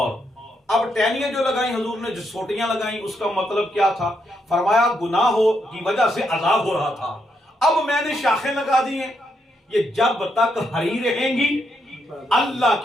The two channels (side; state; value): both; normal; correlation 0.79